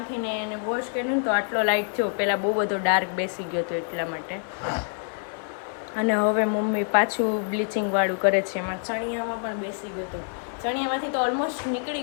એને વોશ કરીને તો આટલો લાઇટ થયો. પહેલાં બહુ બધો ડાર્ક બેસી ગયો હતો એટલા માટે. અને હવે મમ્મી પાછું બ્લીચિંગવાળું કરે છે. એમાં ચણિયામાં પણ બેસી ગયો હતો. ચણિયામાંથી તો ઓલમોસ્ટ નીકળી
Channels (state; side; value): silent; right; 59 dB below the other